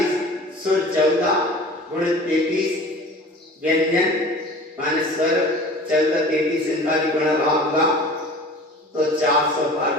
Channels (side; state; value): both; normal; correlation 0.42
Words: सुर 14 गुणित 33 व्यंजन माने स्वर 14 33 इनका भी गुणा भाग होगा तो 400